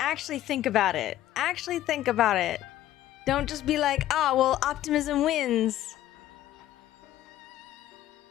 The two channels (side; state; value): right; quieter; 13.4 dB